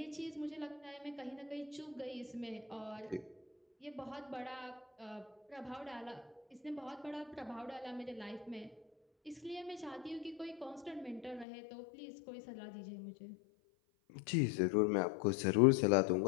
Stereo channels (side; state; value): right; drops out; at 11.5 s